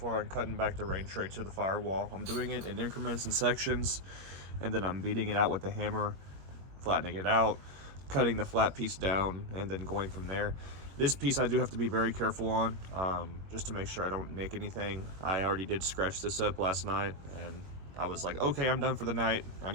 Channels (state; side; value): late; left; 21 ms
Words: on cutting back the rain tray to the firewall. I'm doing it in increments and sections, and then I'm beating it out with a hammer, flattening it out, cutting the flat piece down, and then going from there. This piece I do have to be very careful on, just to make sure I don't nick anything. I already did scratch this up last night, and I was like, okay, I'm done for the night. I